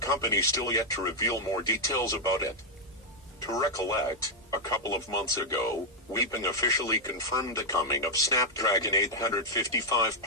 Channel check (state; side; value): normal; both; correlation -0.02